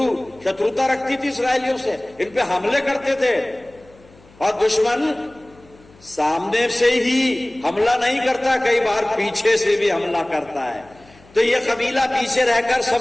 रखती थी इसराइलियों से, इन पे हमले करते थे। और दुश्मन सामने से ही हमला नहीं करता, कई बार पीछे से भी हमला करता है। तो ये कबीला पीछे रहकर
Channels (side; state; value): left; noise; hum, 27 dB below the sound